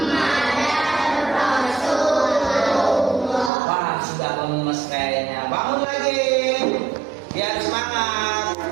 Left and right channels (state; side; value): drops out; left; at 3.5 s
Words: Lemes kayaknya. Bangun lagi biar semangat.